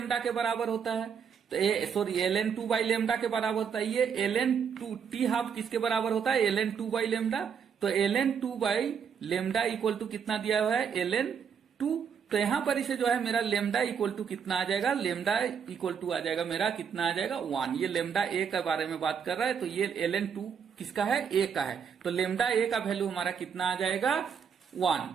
के बराबर होता है। तो ln2 बाई लेमडा के बराबर होता है। ये ln2 टी हाफ किसके बराबर होता है, ln2 बाई लेमडा। तो ln2 by lambda equal to कितना दिया हुआ है ln2। तो यहां पर इसे जो है मेरा लेमडा इक्वल टू कितना आ जाएगा, लेमडा इक्वल टू आ जाएगा मेरा कितना आ जाएगा 1। ये लेमडा ए के बारे में बात कर रहा है, तो ये ln2 किसका है, ए का है। तो लेमडा ए का वैल्यू हमारा कितना आ जाएगा 1।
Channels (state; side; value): quieter; left; 7.1 dB